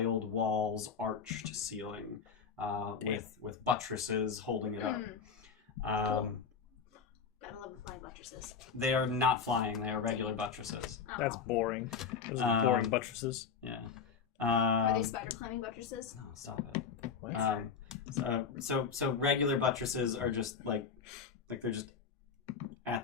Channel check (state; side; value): quieter; right; 6.1 dB